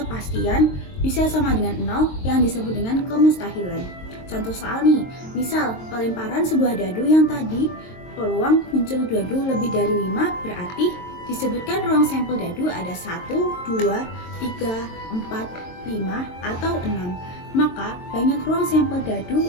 bisa sama dengan 0 yang disebut dengan kemustahilan. Contoh soal nih, misal pelemparan sebuah dadu yang tadi peluang muncul dadu lebih dari 5, berarti disebutkan ruang sampel dadu ada 1, 2, 3, 4, 5, atau 6. Maka banyak ruang sampel dadu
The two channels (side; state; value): right; late; 22 ms